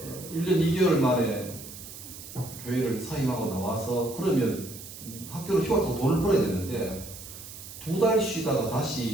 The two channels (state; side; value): noise; right; hiss, 13 dB below the sound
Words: 1년 2개월 만에 교회를 사임하고 나와서 그러면 학교를 휴학하고 돈을 벌어야 되는데 2달 쉬다가